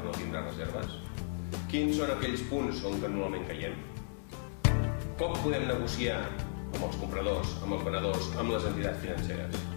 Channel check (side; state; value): right; silent; digital silence